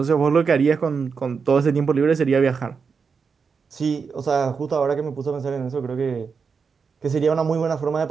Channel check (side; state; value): left; quieter; 5.6 dB